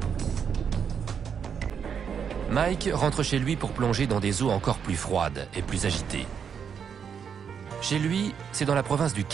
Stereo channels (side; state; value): left; quieter; 7.2 dB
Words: Mike rentre chez lui pour plonger dans des eaux encore plus froides et plus agitées. Chez lui, c'est dans la province du